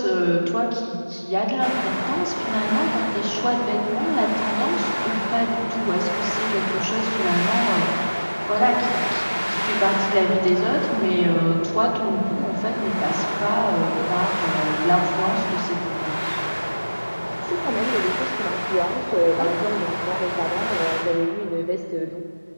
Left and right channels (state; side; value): inverted; both; correlation -1.00